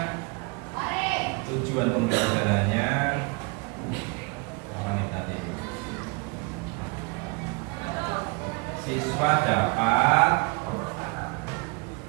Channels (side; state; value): left; quieter; 30.2 dB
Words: tujuan pembelajarannya apa nih tadi? Siswa dapat